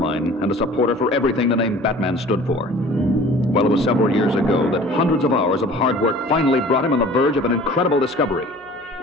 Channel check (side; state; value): both; normal; correlation 0.46